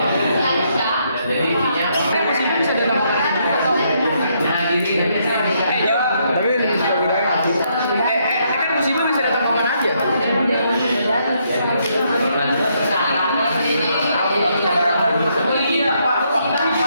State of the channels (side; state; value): both; inverted; correlation -0.74